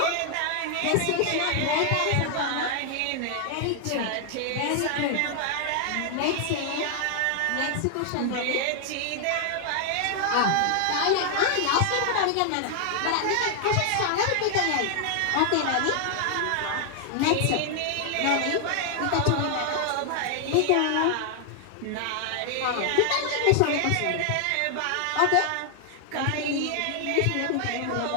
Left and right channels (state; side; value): different; both; correlation 0.00